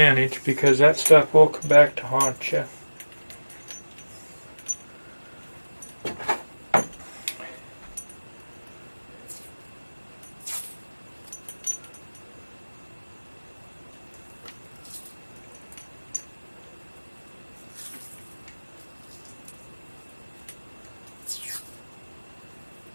because that stuff will come back to haunt you.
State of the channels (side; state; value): both; inverted; correlation -1.00